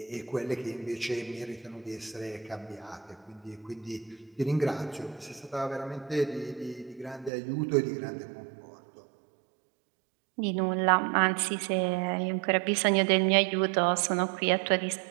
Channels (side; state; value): left; drops out; at 7.3 s